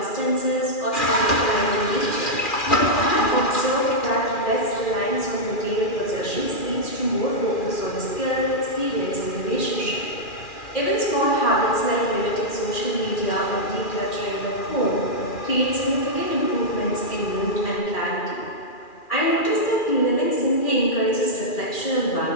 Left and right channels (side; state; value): right; late; 2.4 ms